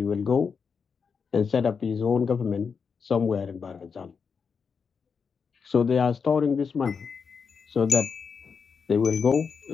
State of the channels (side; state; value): right; quieter; 5.9 dB